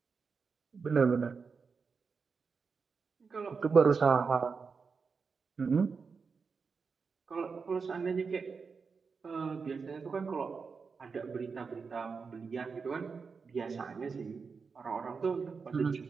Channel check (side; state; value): left; quieter; 5.2 dB